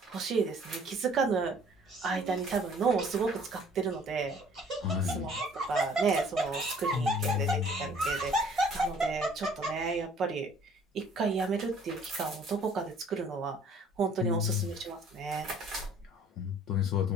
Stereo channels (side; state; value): both; normal; correlation 0.55